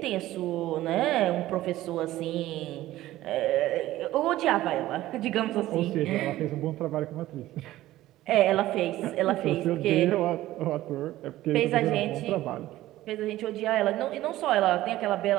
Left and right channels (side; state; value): left; quieter; 15.5 dB